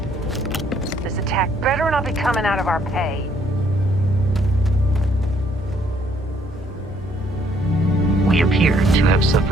This attack better not be coming out of our pay. We appear to have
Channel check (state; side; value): normal; both; correlation 0.66